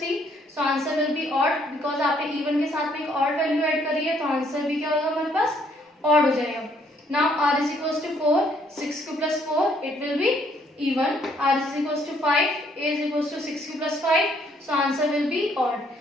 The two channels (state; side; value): normal; both; correlation 0.67